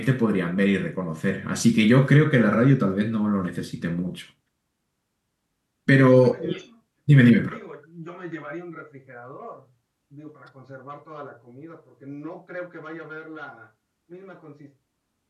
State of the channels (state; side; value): identical; both; correlation 1.00